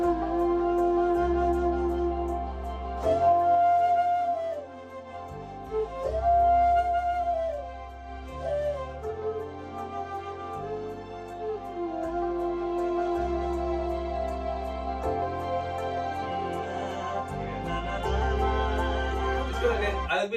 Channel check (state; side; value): identical; both; correlation 1.00